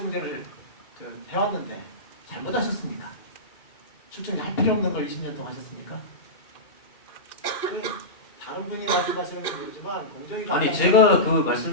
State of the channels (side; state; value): right; late; 2.4 ms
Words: 해왔는데 잘못하셨습니까? 출정제 할 필요 없는 걸 20년 동안 하셨습니까? 다른 분이 말씀하시는 건 모르지만 공정위가 아니 제가 그